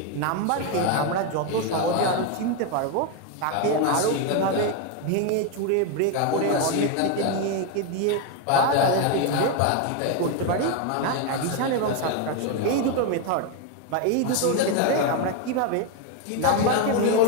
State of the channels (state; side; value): different; both; correlation 0.02